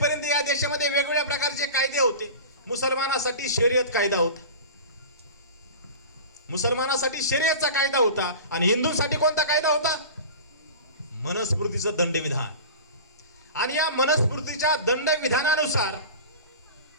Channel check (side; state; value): both; inverted; correlation -0.35